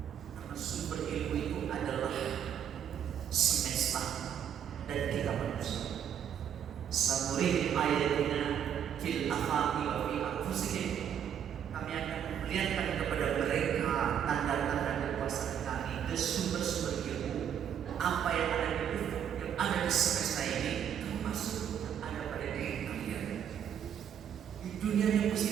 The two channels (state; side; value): quieter; left; 9.0 dB